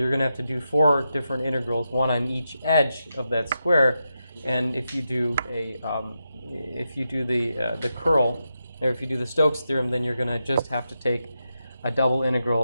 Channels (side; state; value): both; inverted; correlation -0.87